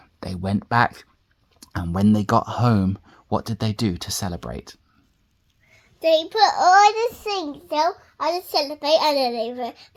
They went back, and when they got home, what did they do to celebrate? They put all the things down and celebrate, and then they went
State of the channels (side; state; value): both; identical; correlation 1.00